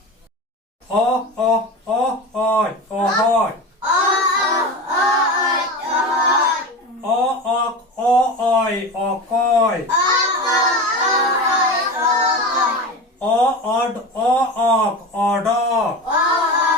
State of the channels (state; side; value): normal; both; correlation 0.27